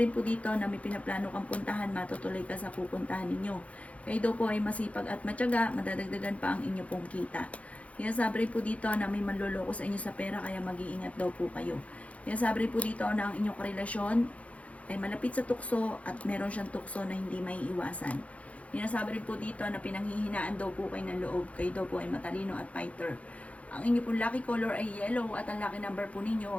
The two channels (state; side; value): late; right; 0.065 ms